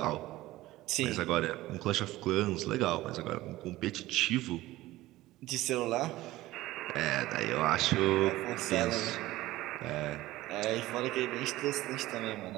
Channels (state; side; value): quieter; left; 17.1 dB